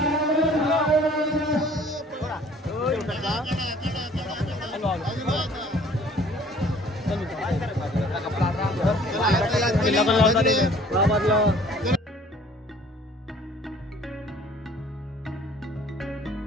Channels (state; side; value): normal; both; correlation 0.53